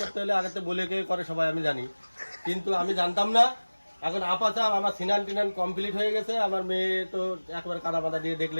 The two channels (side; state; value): both; inverted; correlation -1.00